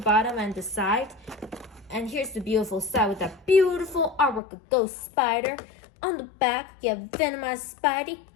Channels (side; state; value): right; drops out; at 4.4 s